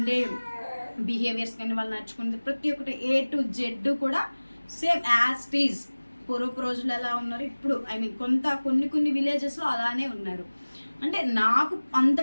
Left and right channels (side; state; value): both; inverted; correlation -1.00